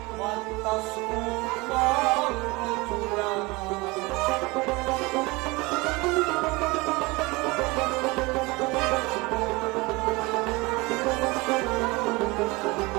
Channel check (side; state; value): left; quieter; 24.0 dB